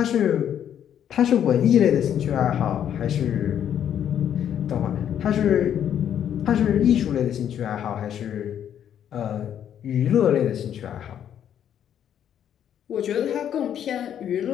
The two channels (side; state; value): right; quieter; 9.6 dB